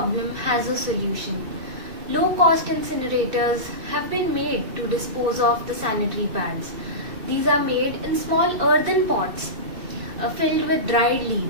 has a solution. Low-cost incinerators have been made to dispose of the sanitary pads. These are made in small earthen pots filled with dried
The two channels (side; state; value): left; late; 2.6 ms